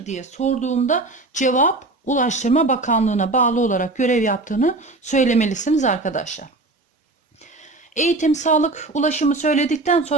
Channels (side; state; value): left; quieter; 3.1 dB